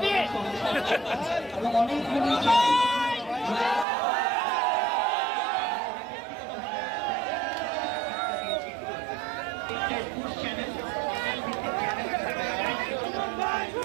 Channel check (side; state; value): left; drops out; at 3.9 s